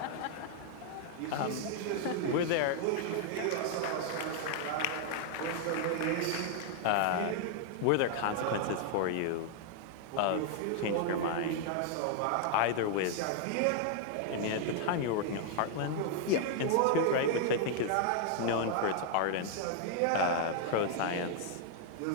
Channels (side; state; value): both; different; correlation 0.00